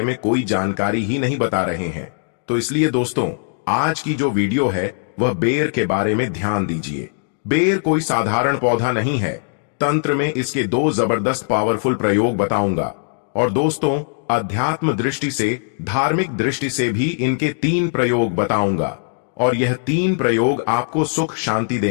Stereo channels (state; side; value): silent; right; digital silence